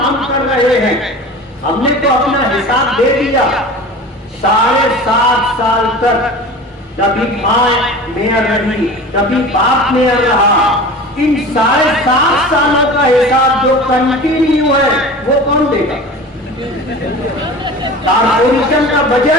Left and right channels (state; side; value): normal; both; correlation 0.37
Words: ہم کر رہے ہیں۔ ہم نے تو اپنا حساب دے دیا۔ 7.5 سال تک کبھی ماں میئر رہی، کبھی باپ میئر رہا، ان 7.5 سالوں کا حساب جو کنٹینیو ہے وہ کون دے گا؟ کارپوریشن کا